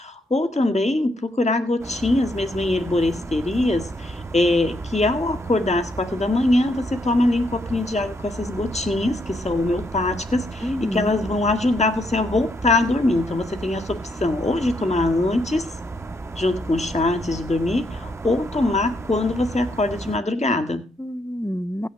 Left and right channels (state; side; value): normal; both; correlation 0.75